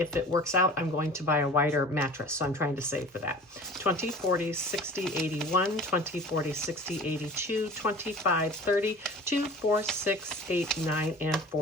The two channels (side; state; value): both; normal; correlation 0.41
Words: it works out, I'm going to buy a wider mattress, so I'm trying to save for that. 20, 40, 60, 81, 20, 40, 60, 82, 25, 30, 2, 4, 6, 8, 9, and